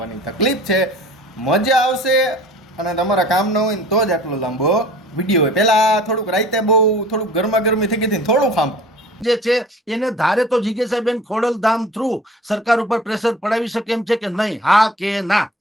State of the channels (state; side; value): normal; both; correlation 0.45